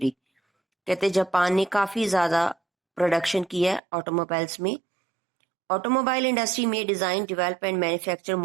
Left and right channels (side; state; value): left; drops out; at 3.8 s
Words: कहते Japan ने काफ़ी ज़्यादा production की है automobiles में. Automobile industry में design, develop and manufacture